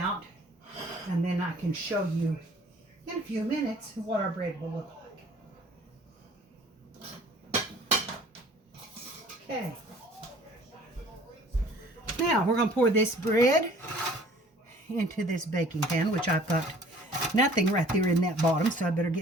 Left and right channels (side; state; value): both; normal; correlation 0.52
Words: and then I can show you in a few minutes what our bread will look like. Okay. Now we're going to pour this bread into this baking pan, which I've got nothing right there in that bottom, so I better